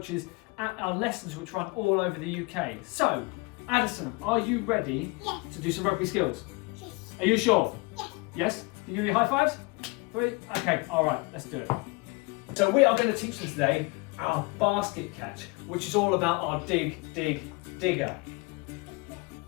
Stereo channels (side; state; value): right; quieter; 26.5 dB